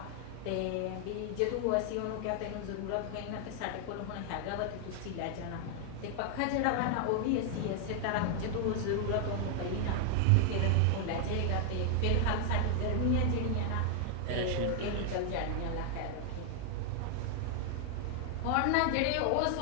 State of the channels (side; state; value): both; different; correlation 0.00